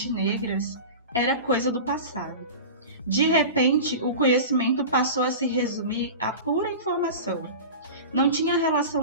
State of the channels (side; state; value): both; inverted; correlation -0.32